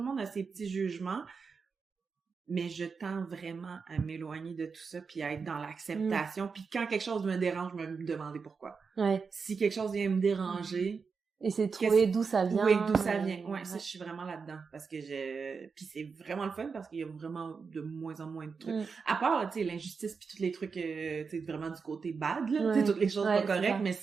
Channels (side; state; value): left; quieter; 5.3 dB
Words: monde a ses petits jugements, mais je tends vraiment à m'éloigner de tout ça puis à être dans l'acceptation, puis quand quelque chose me dérange, me demander pourquoi. Si quelque chose vient me déranger, et c'est de trouver d'où ça vient. Oui, d'où ça vient. Ça, je suis vraiment là-dedans. Parce que puis c'est vraiment le fun parce qu'il y a vraiment de moins en moins de trucs. À part, tu sais, l'injustice puis tous les trucs, tu sais, vraiment du côté bad, là. Tu sais, toutes les choses pas correctes. Mais